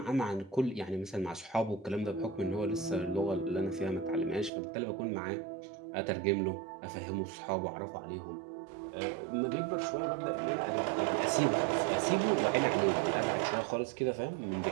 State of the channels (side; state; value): left; drops out; at 4.5 s